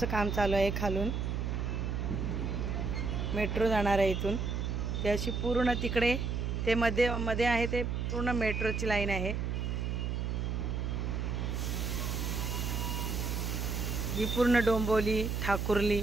काम चालू आहे. खालून मेट्रो जाणार आहे इथून. ते अशी पूर्ण तिकडे ते मध्ये आहे ते पूर्ण मेट्रोची लाईन आहे. ही पूर्ण डोंबिवली, ठाकुर्ली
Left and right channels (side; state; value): right; noise; hum, 1 dB below the sound